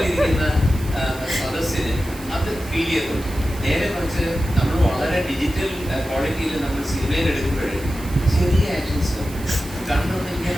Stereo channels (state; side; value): noise; right; hiss, 17 dB below the sound